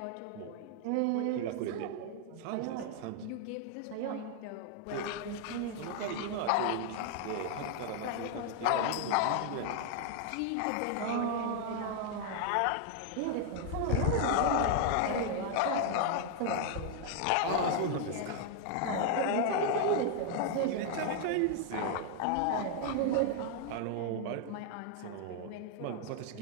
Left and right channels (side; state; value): both; different; correlation 0.00